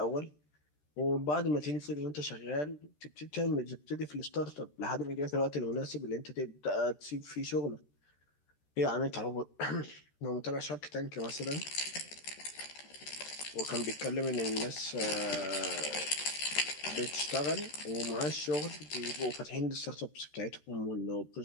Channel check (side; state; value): right; late; 13 ms